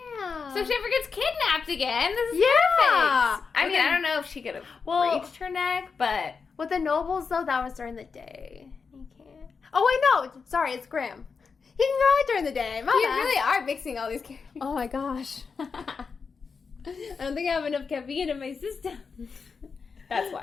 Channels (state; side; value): quieter; right; 5.3 dB